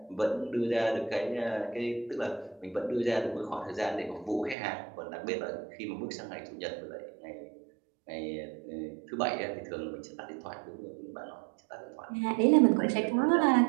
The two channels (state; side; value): drops out; left; at 4.5 s